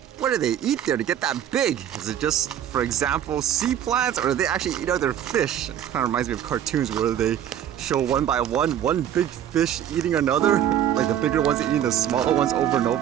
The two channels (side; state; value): left; quieter; 10.3 dB